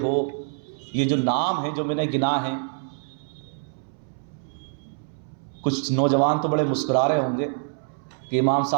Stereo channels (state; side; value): silent; left; 61 dB below the other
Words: ہو، یہ جو نام ہیں جو میں نے گنا ہیں، کچھ نوجوان تو بڑے مسکرا رہے ہوں گے کہ امام